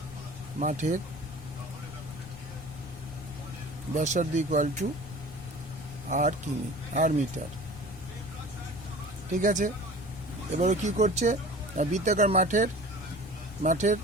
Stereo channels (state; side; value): noise; left; rumble, 15 dB below the sound